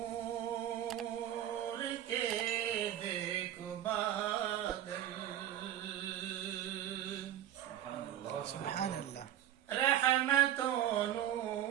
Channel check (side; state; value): left; quieter; 11.6 dB